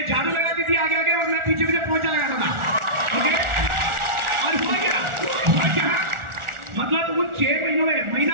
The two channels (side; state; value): left; late; 1.4 ms